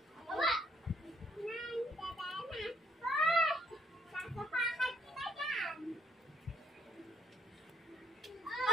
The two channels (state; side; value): normal; both; correlation 0.70